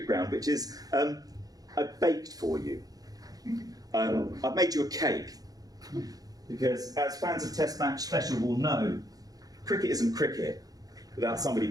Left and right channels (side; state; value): left; late; 0.18 ms